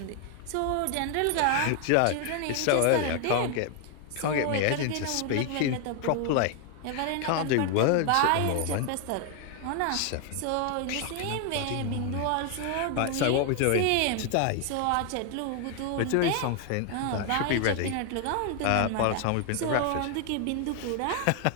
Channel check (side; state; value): both; different; correlation 0.00